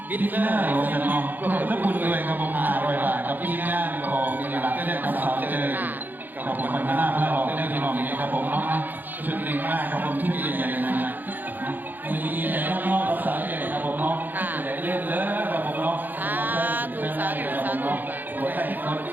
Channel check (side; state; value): left; late; 0.087 ms